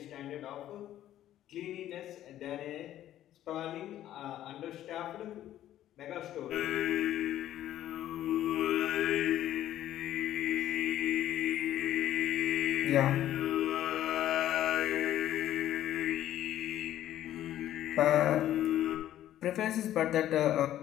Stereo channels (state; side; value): quieter; right; 12.6 dB